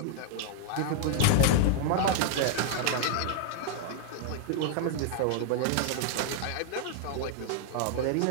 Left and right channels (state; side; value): different; both; correlation -0.01